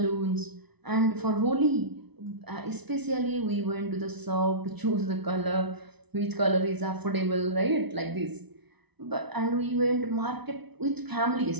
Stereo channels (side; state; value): left; late; 0.99 ms